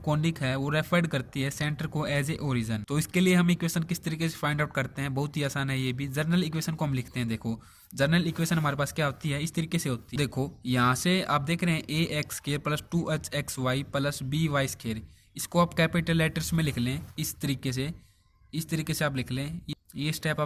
है वो रेफर करती है सेंटर को एज ए ओरिजिन। तो इसके लिए हम इक्वेशन किस तरीके से फाइंड आउट करते हैं, बहुत ही आसान है ये भी। जर्नल इक्वेशन को हम लिखते हैं। देखो जर्नल इक्वेशन हमारे पास क्या होती है, इस तरीके से होती है। देखो यहाँ से आप देख रहे हैं a x square plus 2hxy plus by square. इसको आप कैपिटल लेटर्स में लिख लें इस तरीके से, इस तरीके से आप लिख लें। ये स्टेप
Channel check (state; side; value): identical; both; correlation 1.00